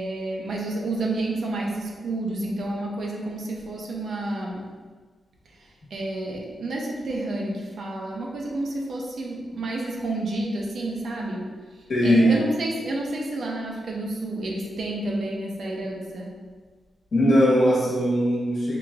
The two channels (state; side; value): normal; both; correlation 0.84